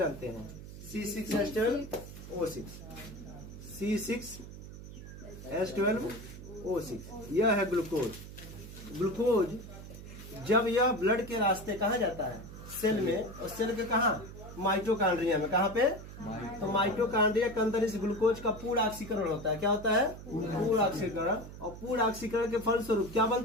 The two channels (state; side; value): noise; right; hum, 13 dB below the sound